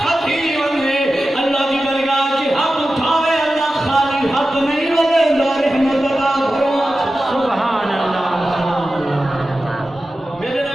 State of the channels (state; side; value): normal; both; correlation 0.93